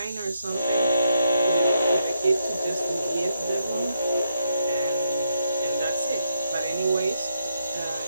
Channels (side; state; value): both; inverted; correlation -0.79